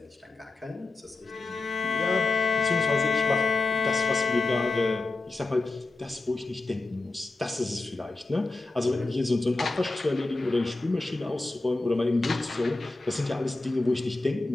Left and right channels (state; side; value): quieter; right; 3.2 dB